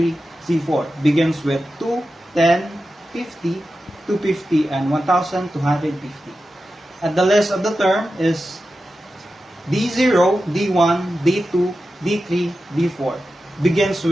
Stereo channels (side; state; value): both; normal; correlation 0.92